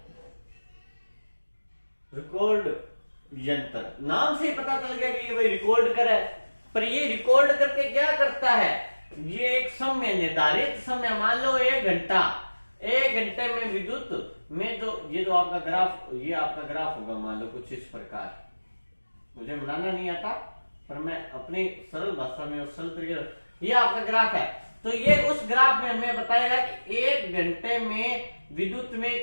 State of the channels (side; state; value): both; inverted; correlation -1.00